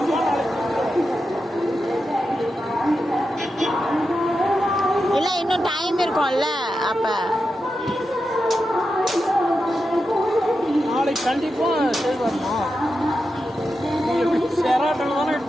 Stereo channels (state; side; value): normal; both; correlation 0.89